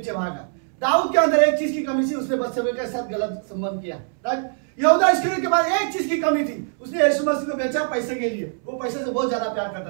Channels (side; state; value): left; silent; 64 dB below the other